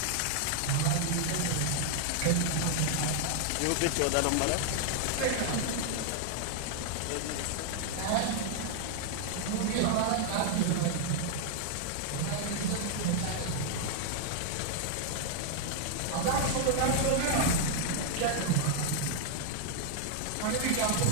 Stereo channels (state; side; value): different; both; correlation 0.00